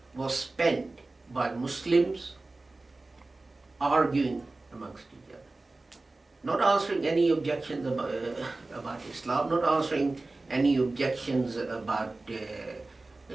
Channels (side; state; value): left; quieter; 3.2 dB